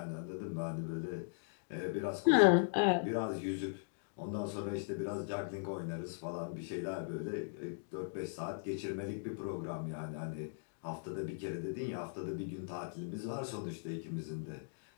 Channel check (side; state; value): right; silent; digital silence